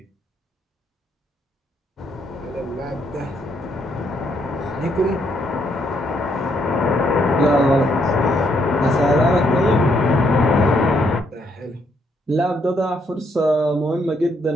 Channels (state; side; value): normal; both; correlation 0.73